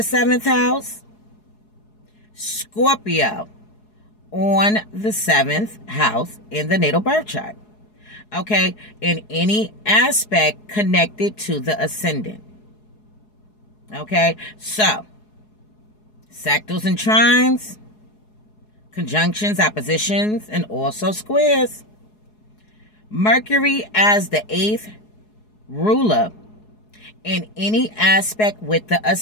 house, Scorpio on the 7th house in the natal birth chart. Okay, in any aspect connected to the ascendant. Okay, so sectals and trines, conjunctions, oppositions, and also squares. Mercury as the 8th ruler in any aspect with the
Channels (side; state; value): right; late; 4.7 ms